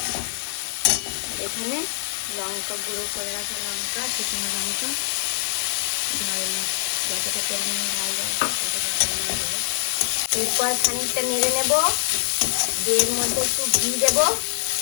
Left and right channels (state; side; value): silent; right; digital silence